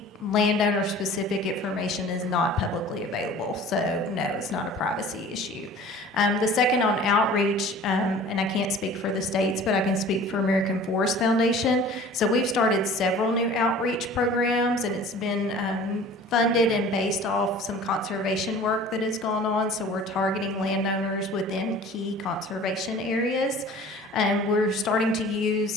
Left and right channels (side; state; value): both; normal; correlation 0.45